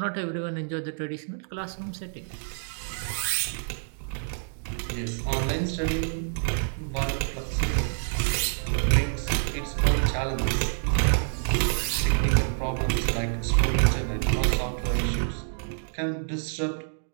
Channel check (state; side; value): silent; left; digital silence